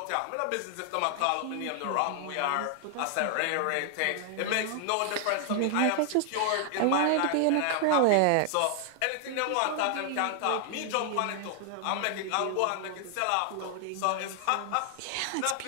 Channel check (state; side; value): different; both; correlation 0.00